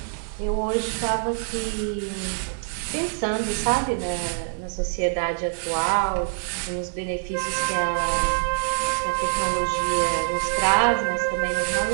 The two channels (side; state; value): left; silent; digital silence